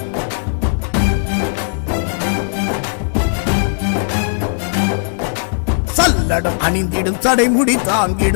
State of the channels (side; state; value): right; silent; 68 dB below the other